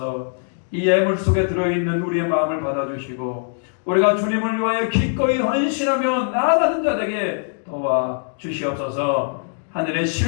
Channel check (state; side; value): silent; right; digital silence